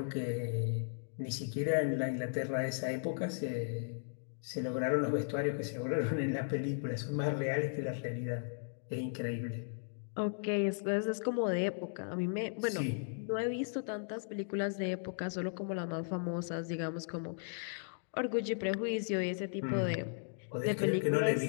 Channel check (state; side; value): silent; right; digital silence